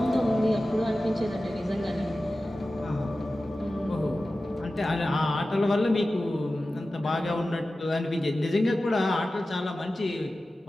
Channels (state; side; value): normal; both; correlation 0.95